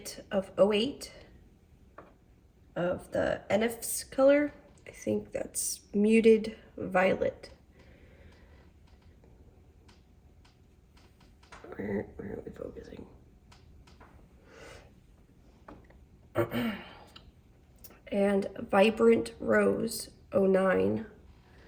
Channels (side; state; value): both; identical; correlation 1.00